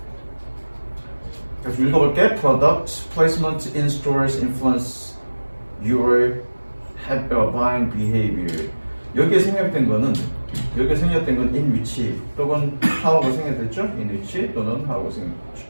계속 읽어볼게. Product placement in stores influence your buying behavior. 여기에 생략된 건 in which 또는 how가 생략됐죠? in which 또는 how가 생략됐죠.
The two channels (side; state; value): both; inverted; correlation -1.00